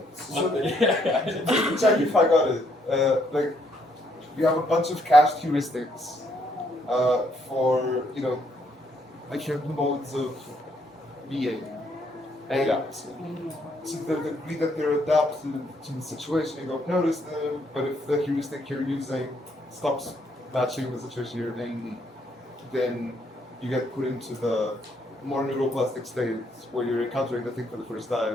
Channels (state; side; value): normal; both; correlation 0.72